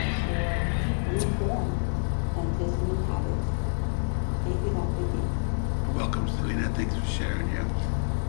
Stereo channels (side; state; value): right; silent; 60 dB below the other